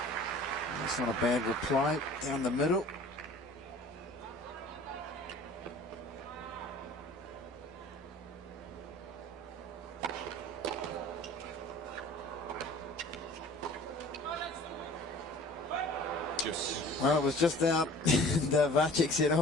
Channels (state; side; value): normal; both; correlation 0.46